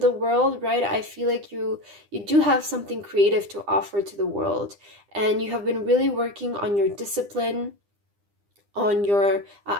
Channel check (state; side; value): late; left; 9.9 ms